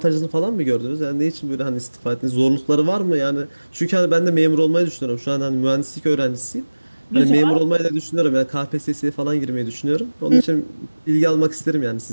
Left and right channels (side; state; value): both; inverted; correlation -1.00